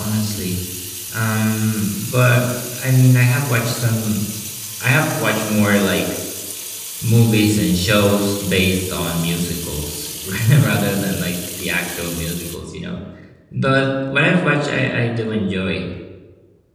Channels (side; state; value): both; identical; correlation 1.00